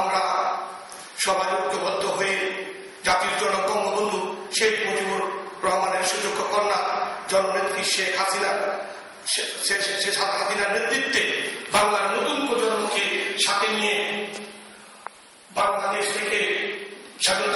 সবাই ঐক্যবদ্ধ হয়ে জাতির জনক বঙ্গবন্ধু শেখ মুজিবুর রহমানের সুযোগ্য কন্যা জননেত্রী শেখ হাসিনার নেতৃত্বে বাংলার নতুন প্রজন্মকে সাথে নিয়ে বাংলাদেশ থেকে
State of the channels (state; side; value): identical; both; correlation 1.00